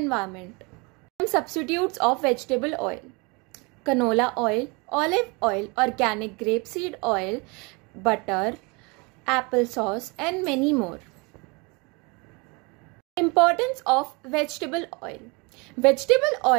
Substitutes of vegetable oil: canola oil, olive oil, organic grapeseed oil, butter, applesauce and many more. Importance of vegetable oil. Vegetable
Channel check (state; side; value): quieter; left; 28.7 dB